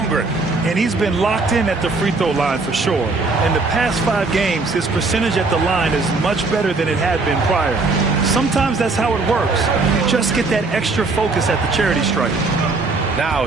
And he's been locked in at the free throw line for sure. In the past 5 games, his percentage at the line is much better than it had been prior. Sometimes that's how it works. You just get that extra focus at the charity stripe. Now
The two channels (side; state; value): left; quieter; 3.7 dB